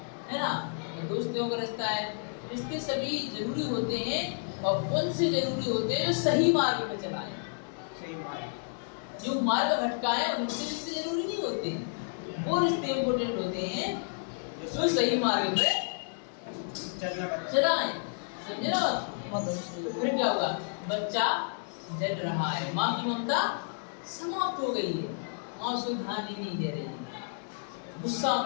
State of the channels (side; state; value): right; silent; digital silence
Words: ना, दोस्तों का रिश्ता है, रिश्ते सभी जरूरी होते हैं, और उनसे जरूरी होते हैं जो सही मार्ग पे चलाए। सही मार्ग। जो मार्ग भटकाए उनसे रिश्ते जरूरी नहीं होते, वो रिश्ते इम्पोर्टेंट होते हैं जो सही मार्ग पे चलाए। समझे ना? फिर क्या होगा? बच्चा जल रहा है, माँ की ममता समाप्त हो गई है, माँ उसको ध्यान ही नहीं दे रही है, गुस्सा